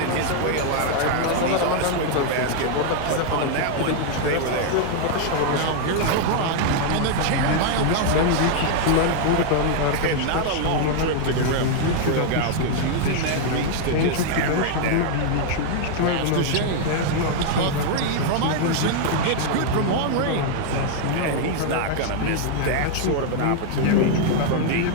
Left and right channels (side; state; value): both; different; correlation 0.00